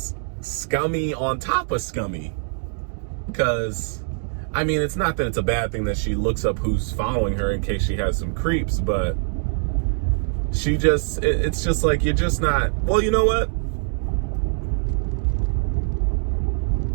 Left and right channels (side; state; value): left; silent; digital silence